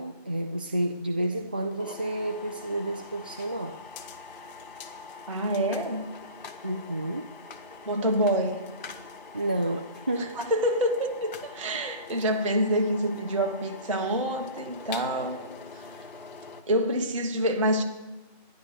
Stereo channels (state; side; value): inverted; both; correlation -0.41